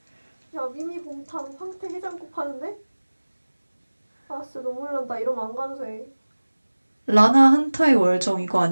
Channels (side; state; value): both; inverted; correlation -1.00